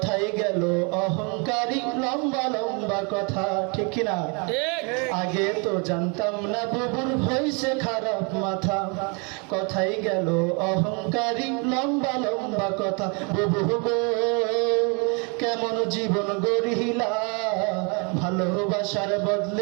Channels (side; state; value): left; quieter; 33.7 dB